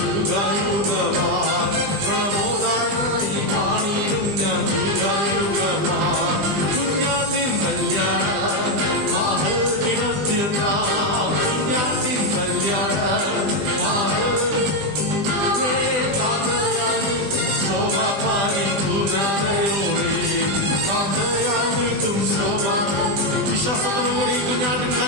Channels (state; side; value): late; left; 20 ms